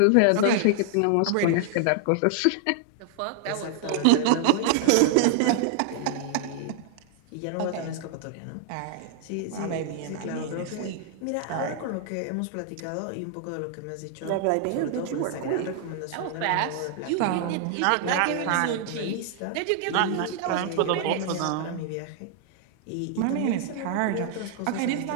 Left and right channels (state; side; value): different; both; correlation 0.00